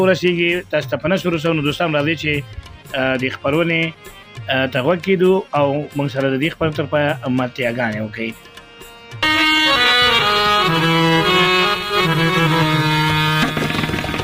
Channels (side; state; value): both; identical; correlation 1.00